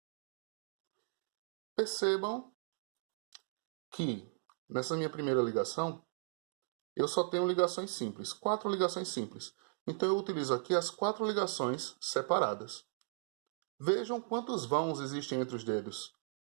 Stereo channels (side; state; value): left; silent; digital silence